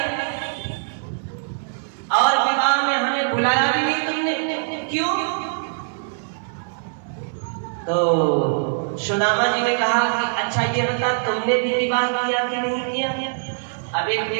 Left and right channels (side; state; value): left; silent; digital silence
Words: और विवाह में हमें बुलाया भी नहीं तुमने, क्यों? तो सुदामा जी ने कहा कि अच्छा ये बता तुमने भी विवाह किया कि नहीं किया? अब एक